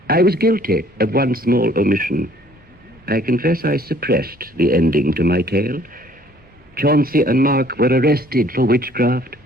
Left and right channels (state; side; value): normal; both; correlation 0.58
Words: I was guilty of one small omission. I confess I suppressed the ending to my tale. Chauncey and Mark were arrested for witchcraft